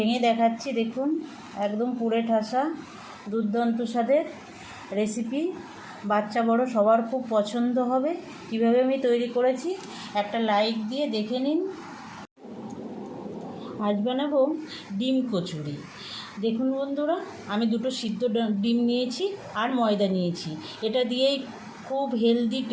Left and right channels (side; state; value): both; identical; correlation 1.00